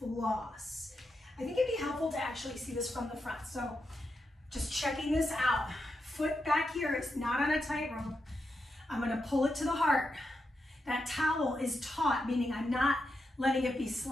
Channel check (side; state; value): both; normal; correlation 0.86